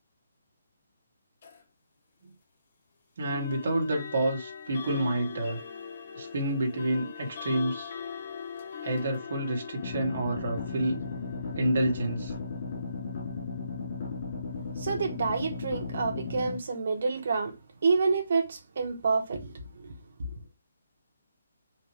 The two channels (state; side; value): inverted; both; correlation -0.79